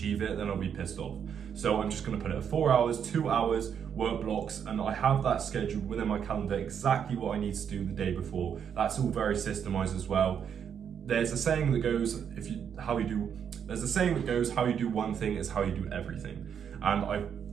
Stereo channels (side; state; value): left; quieter; 7.9 dB